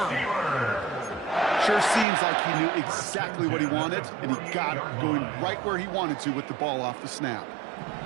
Sure seems like he knew exactly what he wanted, and he got it going right where he wanted to with the ball off the snap.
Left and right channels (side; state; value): left; drops out; at 2.1 s